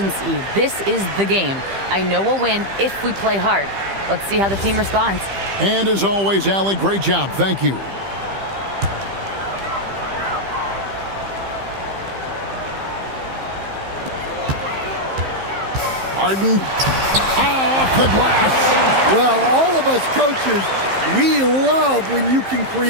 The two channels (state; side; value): late; left; 15 ms